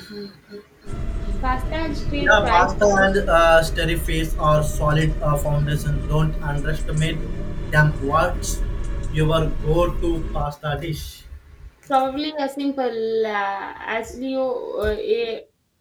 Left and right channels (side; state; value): both; identical; correlation 1.00